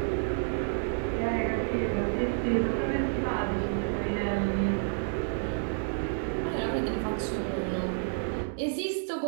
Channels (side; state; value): left; silent; digital silence